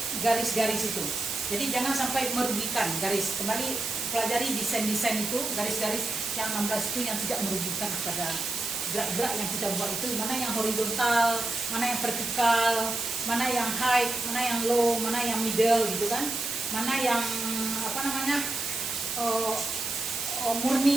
garis-garis itu. Jadi jangan sampai merugikan garis. Kembali pelajari desain itu, garis-garis yang 16 itu yang tidak merugikan kepada gerak-gerak yang kita buat itu. Mana yang horizontal, mana yang vertikal, mana yang high, mana yang low, mana yang middle gitu kan. Mana yang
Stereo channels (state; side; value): noise; right; hiss, 3 dB below the sound